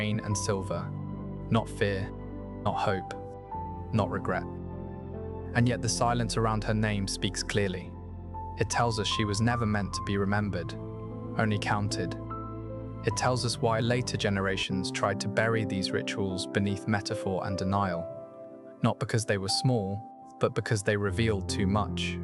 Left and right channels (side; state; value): both; identical; correlation 1.00